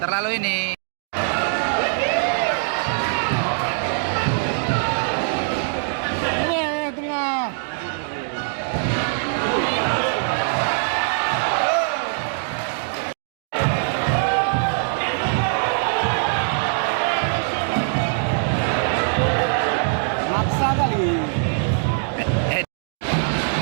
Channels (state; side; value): silent; left; digital silence